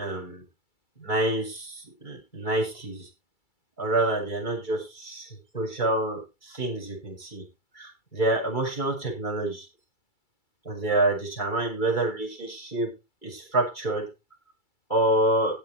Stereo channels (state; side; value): late; right; 2.3 ms